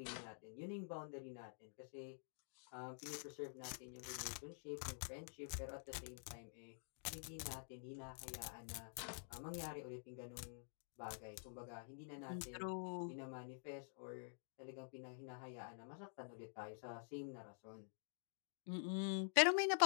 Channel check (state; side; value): silent; right; digital silence